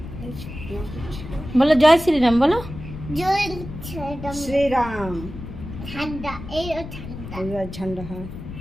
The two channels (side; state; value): left; noise; rumble, 11 dB below the sound